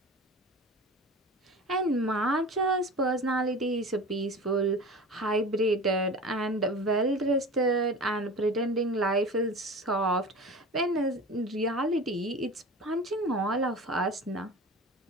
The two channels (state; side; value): normal; both; correlation 0.35